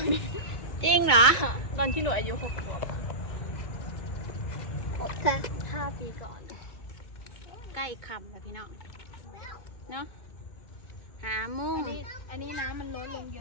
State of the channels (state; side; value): late; right; 2.2 ms